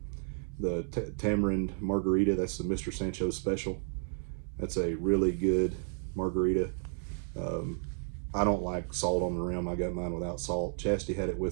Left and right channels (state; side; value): silent; left; 56 dB below the other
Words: The Tamarind Margarita. That's the Mr. Sancho's special. That's a really good margarita. I don't like salt on the rim. I got mine without salt. Chastity had it